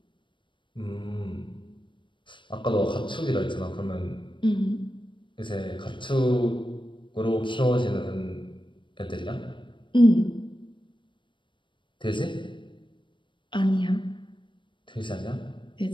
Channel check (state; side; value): late; right; 0.24 ms